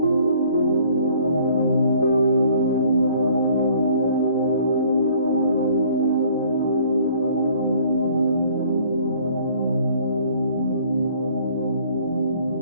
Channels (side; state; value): both; inverted; correlation -0.57